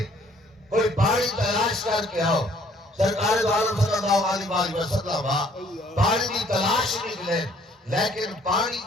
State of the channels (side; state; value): both; normal; correlation 0.61